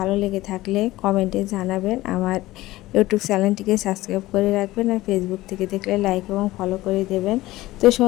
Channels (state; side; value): quieter; right; 17.5 dB